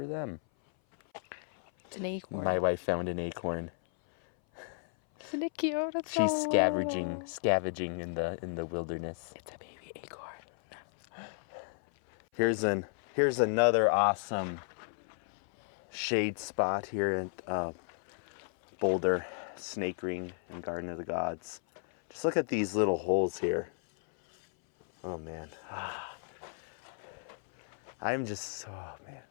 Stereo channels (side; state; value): right; silent; 55 dB below the other